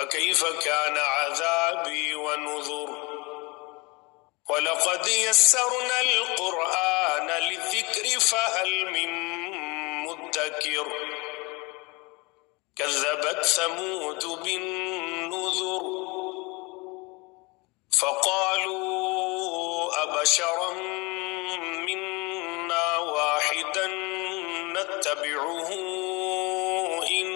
كان عذابي ونذر وَلَقَدْ يَسَّرْنَا الْقُرْآنَ لِلذِّكْرِ فَهَلْ مِن مُّدَّكِرٍ كَذَّبَتْ ثَمُودُ بِالنُّذُرِ فَقَالُوا أَبَشَرًا مِّنَّا وَاحِدًا نَّتَّبِعُهُ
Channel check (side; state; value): right; quieter; 26.5 dB